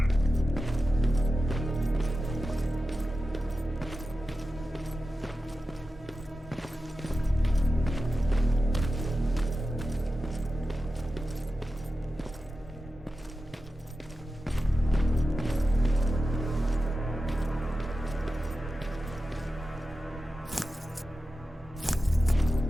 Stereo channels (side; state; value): both; normal; correlation 0.92